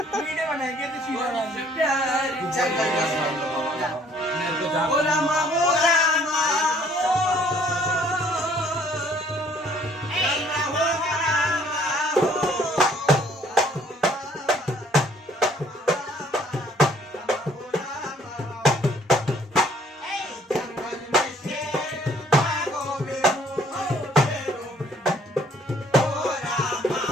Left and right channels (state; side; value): normal; both; correlation 0.60